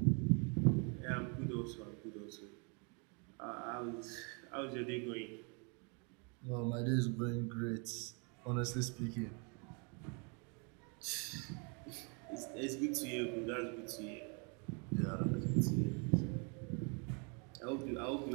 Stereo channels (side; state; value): left; quieter; 35.1 dB